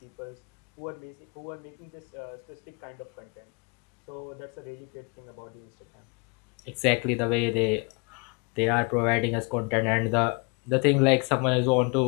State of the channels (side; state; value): right; quieter; 32.1 dB